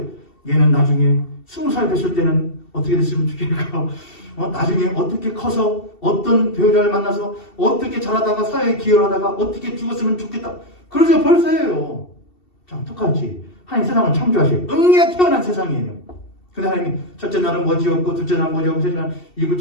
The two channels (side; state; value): right; late; 2.7 ms